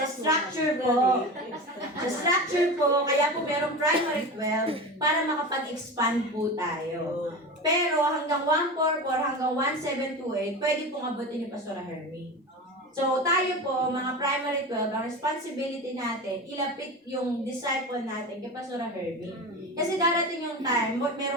structure po, kaya po merong primary 12 para makapag-expand po tayo. Pero hanggang 144, hanggang 1728, pwede pong abutin ni Pastor Hermie. So, tayo po, mga primary 12, ang responsibility natin, ilapit yung disciple natin kay Pastor Herbie. Kasi darating yung time,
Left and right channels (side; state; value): both; normal; correlation 0.28